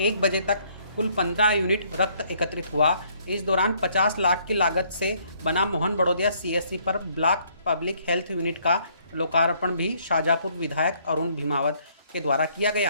बजे तक कुल 15 यूनिट रक्त एकत्रित हुआ। इस दौरान 50 लाख की लागत से बना मोहन बड़ोदिया सीएससी पर ब्लॉक पब्लिक हेल्थ यूनिट का लोकार्पण भी शाजापुर विधायक अरुण भीमावत के द्वारा किया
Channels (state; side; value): inverted; both; correlation -0.65